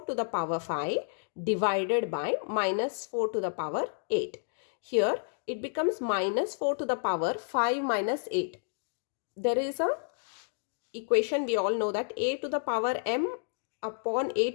to the power 5 divided by minus 4 to the power 8. Here it becomes minus 4 to the power 5 minus 8. There is a equation, we all know that a to the power m upon a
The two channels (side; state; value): right; silent; digital silence